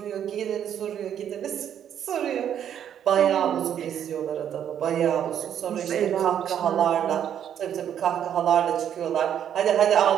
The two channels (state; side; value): quieter; left; 9.5 dB